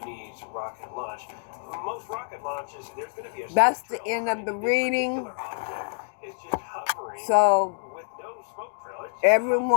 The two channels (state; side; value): silent; right; digital silence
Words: rocket launch. Most rocket launches, there's going to be a That's the end of the reading. It's just hovering So, with no smoke trail.